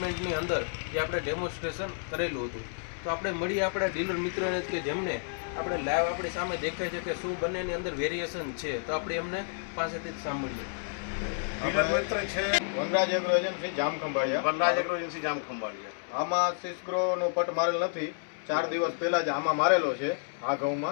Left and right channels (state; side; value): silent; right; 58 dB below the other